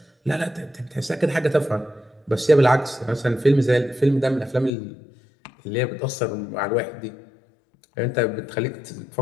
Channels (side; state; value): right; drops out; at 4.7 s